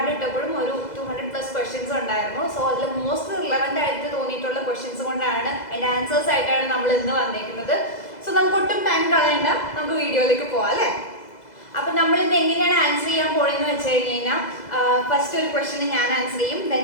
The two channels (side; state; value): right; late; 2.0 ms